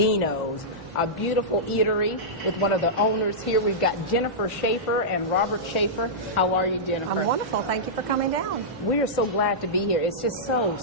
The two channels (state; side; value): normal; both; correlation -0.13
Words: a beautiful eatery with one of the owners here. We've got Jennifer Schaefer and Robert Schaefer. How are you, Jennifer? I'm wonderful. Thank you for coming down. We are so glad to be here. It's just